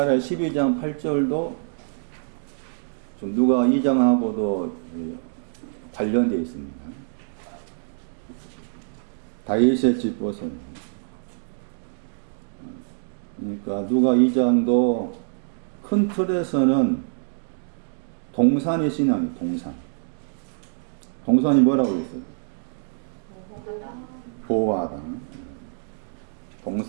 12장 8절도 좀 누가 2장하고도 관련되어 있습니다. 다윗의 집 보세요. 그러니까 누가 2장도 큰 틀에서는 동산의 신앙이 동산. 동산이 뭐라고 했어요? 보호하다.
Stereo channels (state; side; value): silent; left; digital silence